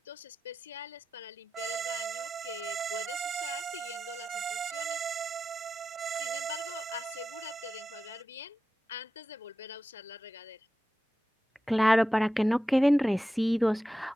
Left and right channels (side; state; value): both; normal; correlation 0.92